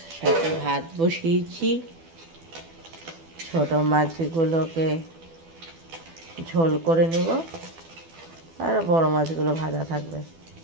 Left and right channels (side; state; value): left; late; 12 ms